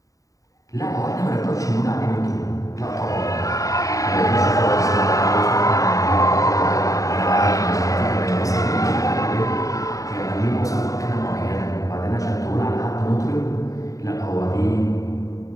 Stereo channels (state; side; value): late; right; 0.16 ms